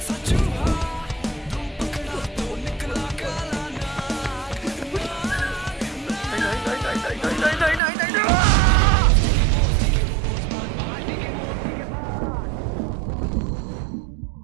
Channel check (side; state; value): left; drops out; at 7.8 s